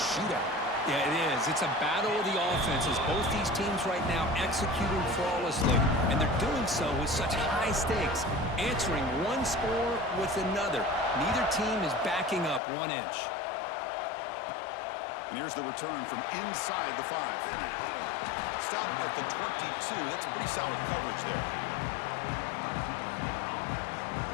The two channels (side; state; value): right; drops out; at 12.6 s